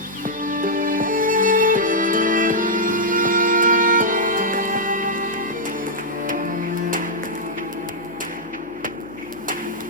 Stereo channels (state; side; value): noise; left; hum, 28 dB below the sound